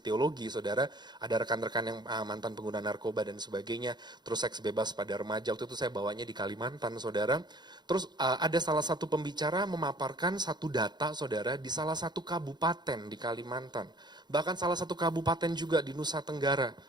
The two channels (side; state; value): left; late; 0.21 ms